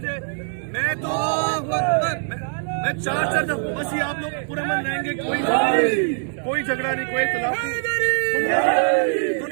میں چار بس یہ آپ لوگ پورے من رہیں گے، کوئی جھگڑا نہیں، کوئی اختلاف نہیں،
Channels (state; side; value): silent; left; digital silence